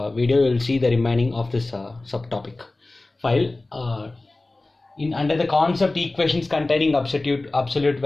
video you will see the remaining of this subtopic file. Under the concept equations containing absolute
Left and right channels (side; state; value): right; quieter; 3.0 dB